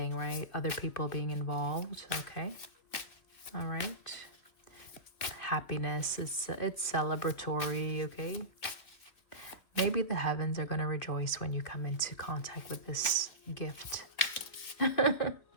right? Other people being involved. Okay. All right. Happiness, it's celebratory. Okay. Maybe the heavens are going to rejoice when you come into contact with this gift. I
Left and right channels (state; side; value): late; right; 2.5 ms